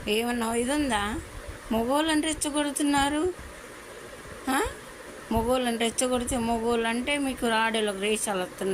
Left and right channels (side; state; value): both; identical; correlation 1.00